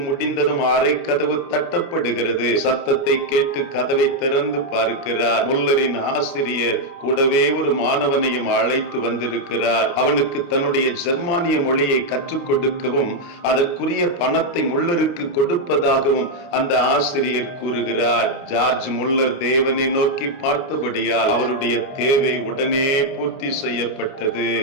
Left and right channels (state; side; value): late; right; 29 ms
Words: முடிந்ததும் அறை கதவு தட்டப்படுகிறது. சத்தத்தை கேட்டு கதவை திறந்து பார்க்கிறார். முல்லரின் ஆசிரியர் கூடவே ஒரு மாணவனையும் அழைத்து வந்திருக்கிறார். அவனுக்கு தன்னுடைய ஜெர்மானிய மொழியை கற்றுக் கொடுக்கவும் அதற்குரிய பணத்தை முல்லருக்கு கொடுப்பதாகவும் அந்த ஆசிரியர் கூறுகிறார். ஜார்ஜ் முல்லர் தேவனை நோக்கி பார்த்தபடியால் அவருடைய தேவை உடனே பூர்த்தி செய்யப்பட்டது.